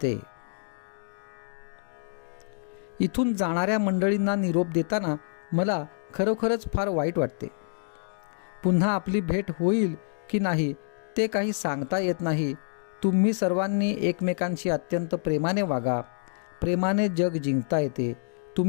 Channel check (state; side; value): silent; right; digital silence